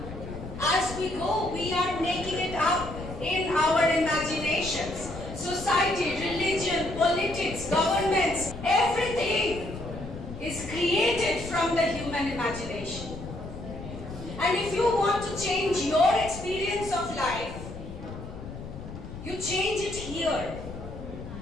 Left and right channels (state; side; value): noise; left; rumble, 11 dB below the sound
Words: As we go, we are making it up in our imaginations. Society, religion, politics, governments, everything is created from the human imagination. And if you want to change your experience of life, you change it here.